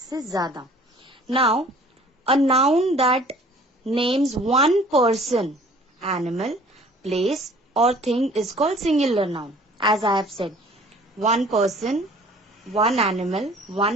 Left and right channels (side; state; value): both; normal; correlation 0.52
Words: ज़्यादा. Now, a noun that names one person, animal, place or thing is called singular noun. As I have said, one person, one animal,